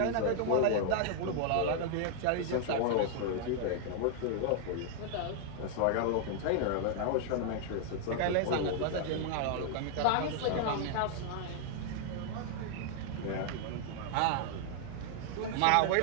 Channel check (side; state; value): both; different; correlation 0.00